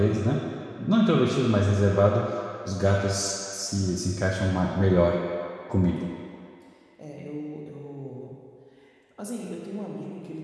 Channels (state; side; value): identical; both; correlation 1.00